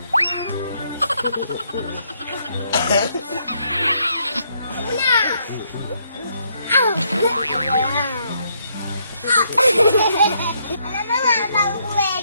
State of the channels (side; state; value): both; inverted; correlation -0.73